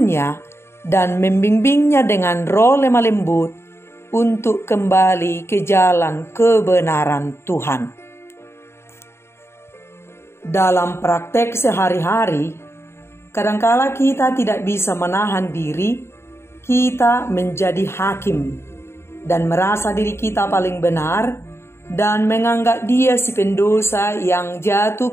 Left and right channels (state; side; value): late; right; 0.12 ms